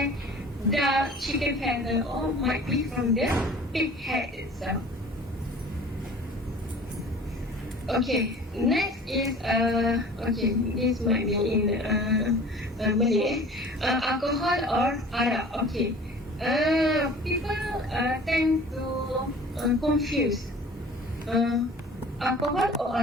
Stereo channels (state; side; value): normal; both; correlation 0.45